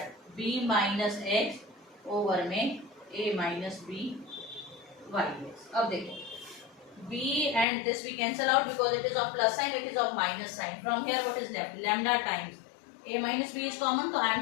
b minus x over में a minus b y x. अब देखो b and this we cancel out because it is of plus sign, it is of minus sign. From here what is left, lambda times a minus b is common, तो I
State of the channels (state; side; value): drops out; right; at 7.7 s